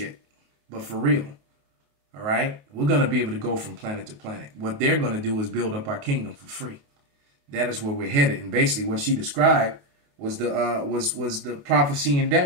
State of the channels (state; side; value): late; left; 28 ms